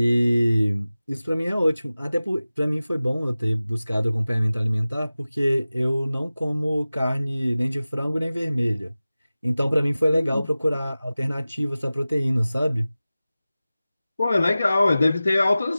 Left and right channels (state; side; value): inverted; both; correlation -0.97